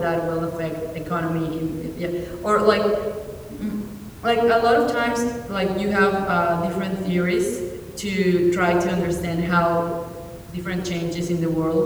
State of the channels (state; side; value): identical; both; correlation 1.00